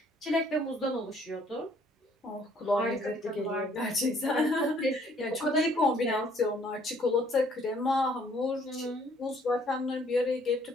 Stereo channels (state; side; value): normal; both; correlation 0.62